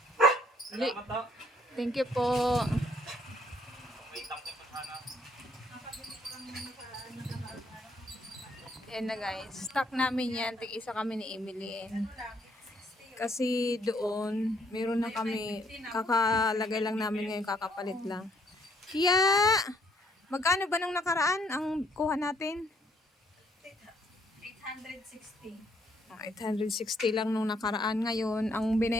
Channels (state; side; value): normal; both; correlation 0.67